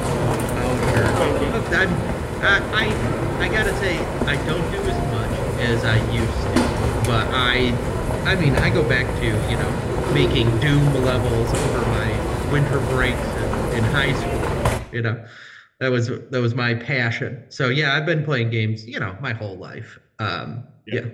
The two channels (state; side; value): identical; both; correlation 1.00